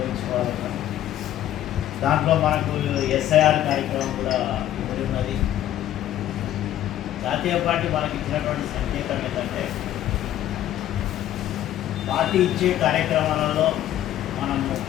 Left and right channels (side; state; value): right; quieter; 12.4 dB